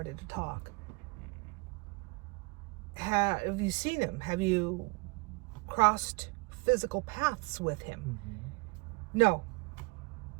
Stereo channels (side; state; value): left; quieter; 27.7 dB